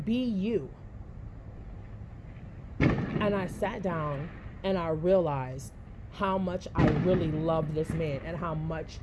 Be you. And I sat down and I realized how much I really love this man, and how much,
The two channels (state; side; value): identical; both; correlation 1.00